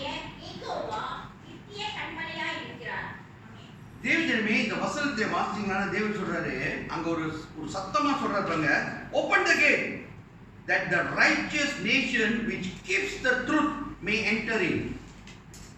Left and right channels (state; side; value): identical; both; correlation 1.00